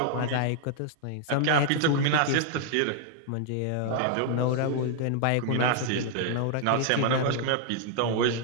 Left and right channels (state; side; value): different; both; correlation -0.01